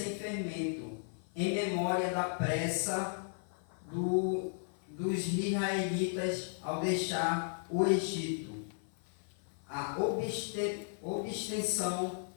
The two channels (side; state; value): right; silent; 54 dB below the other